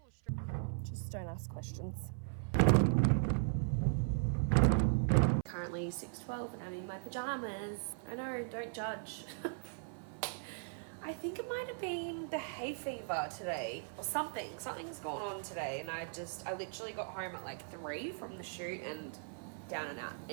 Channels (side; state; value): left; silent; 52 dB below the other